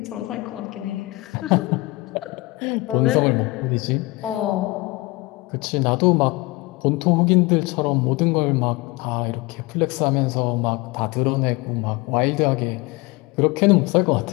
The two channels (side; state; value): right; quieter; 22.0 dB